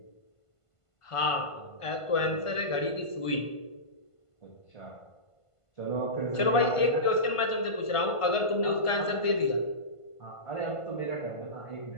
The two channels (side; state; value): right; late; 1.5 ms